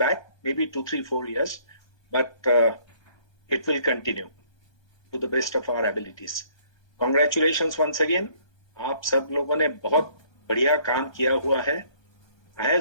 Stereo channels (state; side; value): late; right; 1.2 ms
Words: maybe 2, 3, 4 years, but it will continue to the best of our abilities. Congratulations once again. आप सब लोगों ने बहुत बढ़िया काम किया हुआ है. I